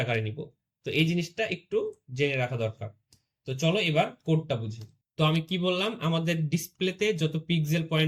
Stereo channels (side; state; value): both; identical; correlation 1.00